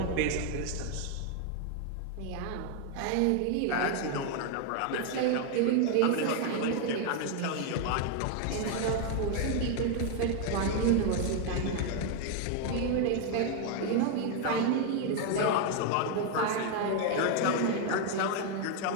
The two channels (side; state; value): both; different; correlation 0.01